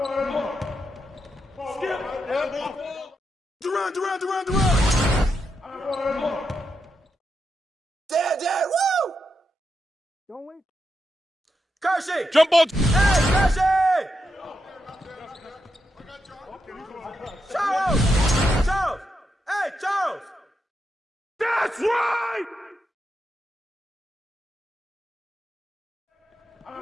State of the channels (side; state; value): both; normal; correlation 0.84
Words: Skip. Durant. Dad, woo! Don't wait. Kersey! Jump ball! Hey, Kersey! Charles! Hey, Charles! That's right!